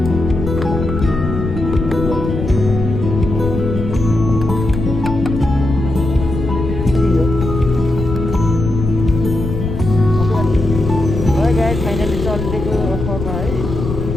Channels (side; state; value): left; noise; rumble, 4 dB below the sound